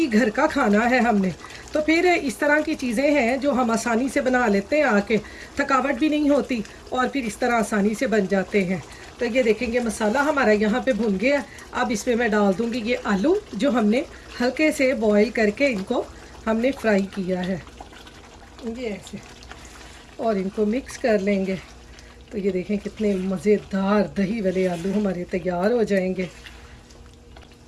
घर का खाना है हमने, तो फिर इस तरह की चीज़ें हैं जो हम आसानी से बना लेते हैं आके, थकावट भी नहीं होती और फिर इस तरह आसानी से बन जाते हैं। तो ये देखेंगे मसाला हमारा यहाँ पे भुन गया। अब इसमें मैं डाल दूँगी ये आलू जो हमने हल्के से बॉईल करके इनको हमने फ्राई किया है, ये ऐसे, और इनको मिक्स कर लेंगे। तो ये देखें कितने मज़ेदार दही वाले आलू हमारे तैयार हो जाएंगे।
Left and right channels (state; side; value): identical; both; correlation 1.00